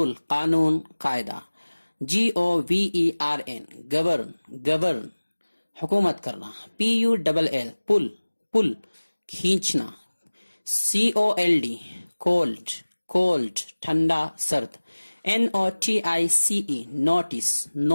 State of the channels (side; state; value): both; inverted; correlation -1.00